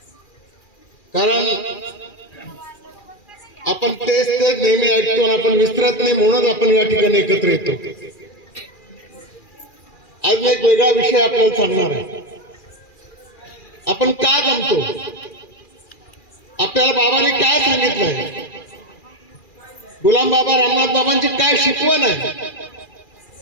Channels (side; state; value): right; late; 2.4 ms